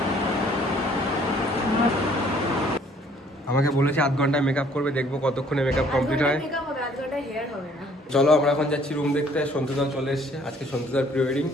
আমাকে বলেছে 8 ঘন্টায় মেকআপ করবে, দেখবো কতক্ষণে মেকআপ কমপ্লিট হয়। চলো আমরা এখন যাচ্ছি রুম দেখতে। সন্তুদা চলে এসছে, আজকে সন্তুদার প্রি ওয়েডিং।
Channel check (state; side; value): normal; both; correlation 0.60